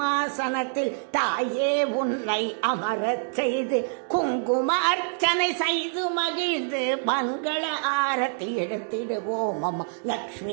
தாயே உன்னை அமரச் செய்து குங்கும அர்ச்சனை செய்து மகிழ்ந்து மங்கள ஆரத்தி எடுத்திடுவோம் அம்மா.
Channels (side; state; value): left; silent; 61 dB below the other